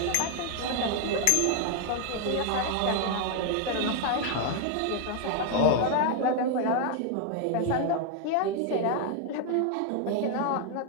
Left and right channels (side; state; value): both; different; correlation 0.01